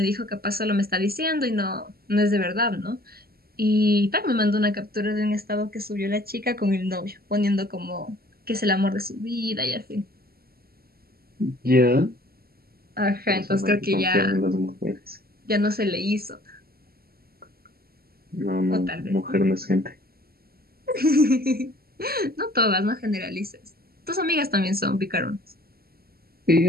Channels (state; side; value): late; left; 0.45 ms